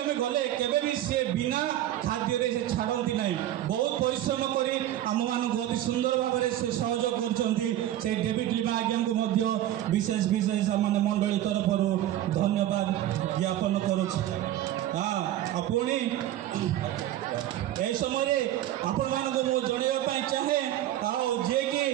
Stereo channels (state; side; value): quieter; left; 13.0 dB